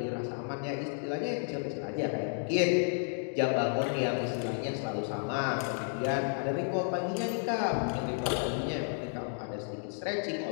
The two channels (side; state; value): right; silent; 56 dB below the other